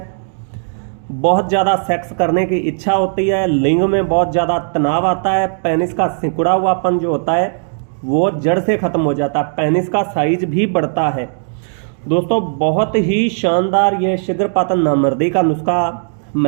बहुत ज़्यादा सेक्स करने की इच्छा होती है, लिंग में बहुत ज़्यादा तनाव आता है, पेनिस का सिकुड़ा हुआपन जो होता है वो जड़ से ख़त्म हो जाता है, पेनिस का साइज भी बढ़ता है। दोस्तों बहुत ही शानदार ये शीघ्रपातन नामर्दी का नुस्खा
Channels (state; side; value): silent; left; digital silence